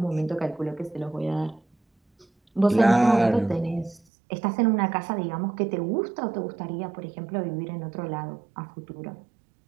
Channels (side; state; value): left; drops out; at 4.0 s